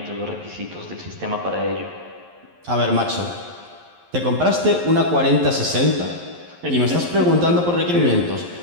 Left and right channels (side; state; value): left; late; 11 ms